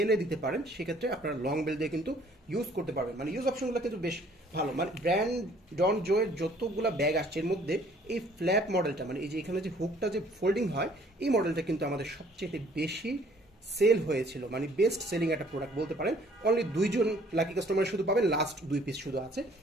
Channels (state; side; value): normal; both; correlation 0.58